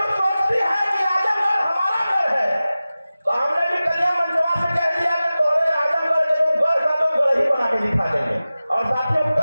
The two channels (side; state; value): both; inverted; correlation -0.96